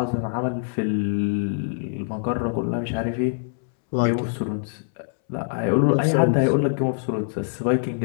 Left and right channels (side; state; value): right; silent; 63 dB below the other